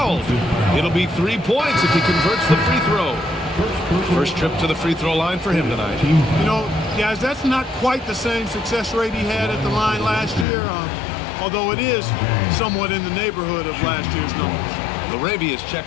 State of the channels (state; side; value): drops out; right; at 10.5 s